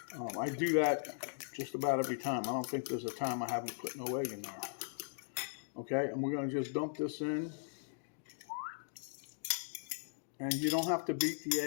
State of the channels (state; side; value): silent; right; digital silence